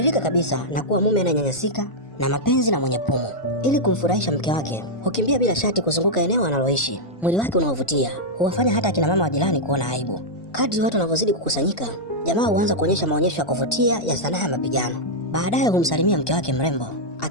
kabisa na kuwa mume ananyanyasika na mapenzi na mwenye pumu. Ili kumfurahisha mke wake, hukimbia bila shati kuzunguka eneo analoishi. Mwili wake unaovutia huwafanya hata akina mama wa jirani kuona aibu. Kadri watu wanavyozidi kukusanyika, jamaa huanza kuonyesha maonyesho ya kuvutia ya sanaa ya mapigano. Baadaye humsalimia mke wake mrembo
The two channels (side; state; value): right; late; 1.2 ms